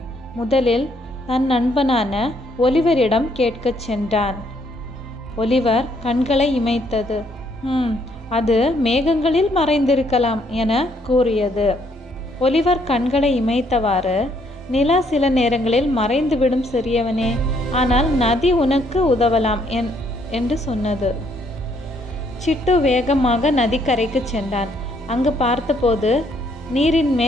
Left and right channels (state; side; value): normal; both; correlation 0.69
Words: முதலில் தன் நண்பனான ஒலிவரிடம் கேட்கச் சென்றான். ஒலிவர் கண்களை இமைத்தது. அது மேகங்களில் மறைந்திருக்கலாம் என கூறியது. ஒலிவர் கண்களை இமைத்தவாறு, நிலா சில நேரங்களில் மறைந்துவிடும் சிறியவனே, ஆனால் நதி உனக்கு உதவலாம் என்று சொன்னது. சிட்டு வேகமாக நதிக்கரைக்கு சென்றான். அங்கு பார்த்தபோது நீரின்